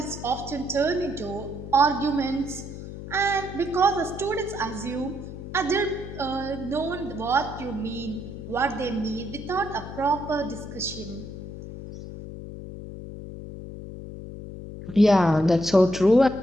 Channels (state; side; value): noise; left; hum, 11 dB below the sound